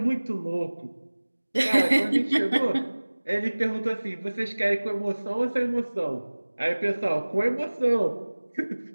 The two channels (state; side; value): inverted; both; correlation -1.00